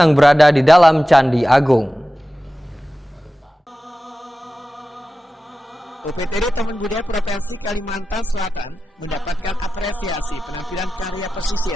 berada di dalam Candi Agung. UPTD Taman Budaya Provinsi Kalimantan Selatan mendapatkan apresiasi penampilan karya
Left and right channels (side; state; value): both; normal; correlation 0.94